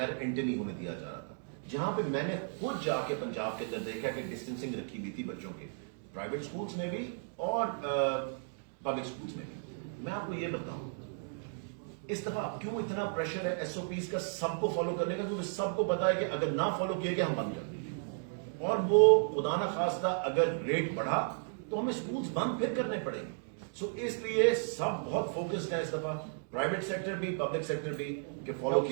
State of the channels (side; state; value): left; silent; digital silence